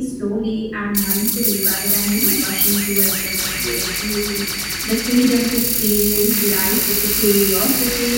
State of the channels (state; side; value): identical; both; correlation 1.00